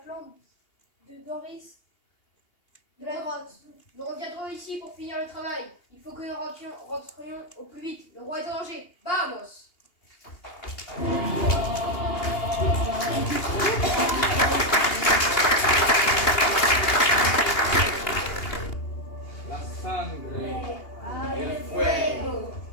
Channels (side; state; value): right; late; 2.8 ms